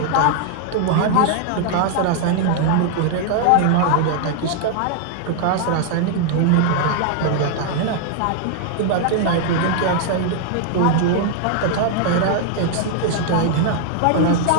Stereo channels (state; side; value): different; both; correlation 0.00